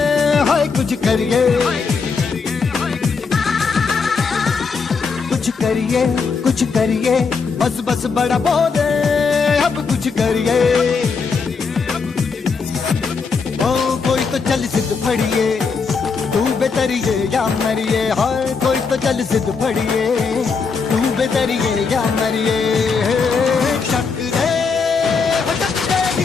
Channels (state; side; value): quieter; right; 5.2 dB